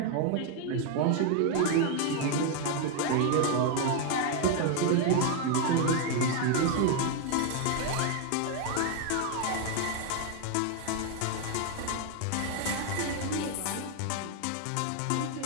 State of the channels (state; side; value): different; both; correlation 0.01